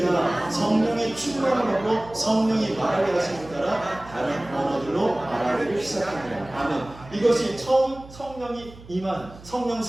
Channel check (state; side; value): noise; right; hum, 19 dB below the sound